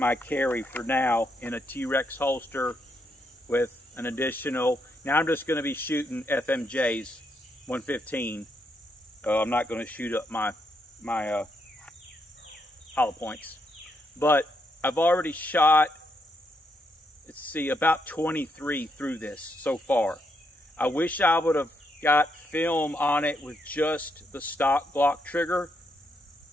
carry for now, in a T-Rex holster with an additional. Now I'm just going to be shooting FMJs 115. I'm not going to shoot up my hollow points, but I've already shot, let's see, about 23 through this so far. I wish I would have got film on it with just the stock Glock trigger.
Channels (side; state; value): both; normal; correlation 0.79